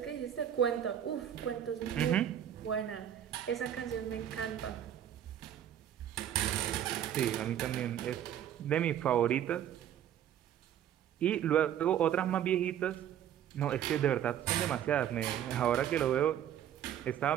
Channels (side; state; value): left; quieter; 10.3 dB